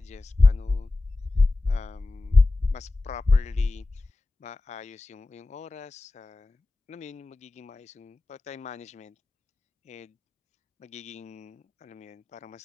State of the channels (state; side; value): quieter; right; 3.2 dB